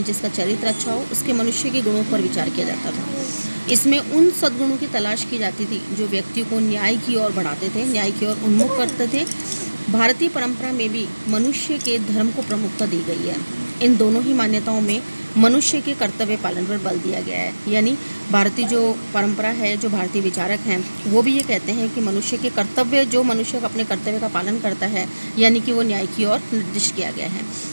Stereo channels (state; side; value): inverted; both; correlation -1.00